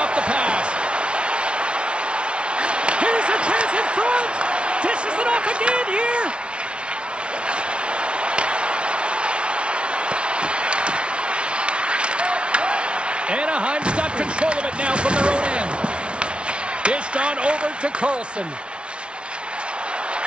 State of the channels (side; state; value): left; late; 0.058 ms